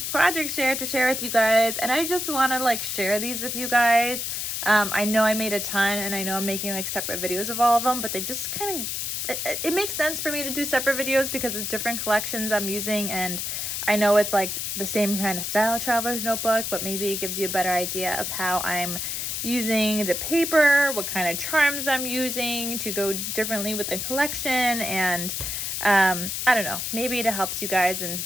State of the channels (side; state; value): left; noise; hiss, 3 dB below the sound